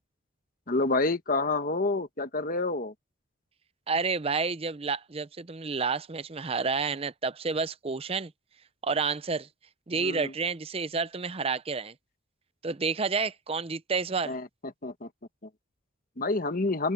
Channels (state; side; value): normal; both; correlation 0.06